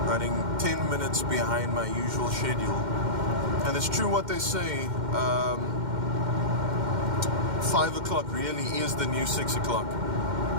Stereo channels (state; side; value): late; left; 2.1 ms